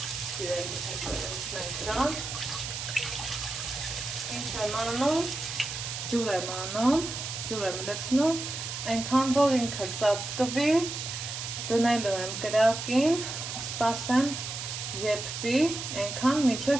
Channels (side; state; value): right; noise; hiss, 6 dB below the sound